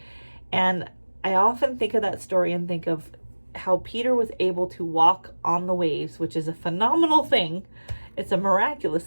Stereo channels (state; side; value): inverted; both; correlation -1.00